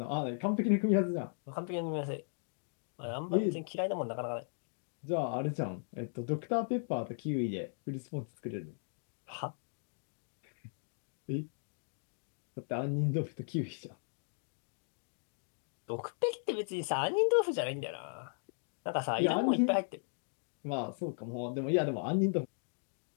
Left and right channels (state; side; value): silent; right; digital silence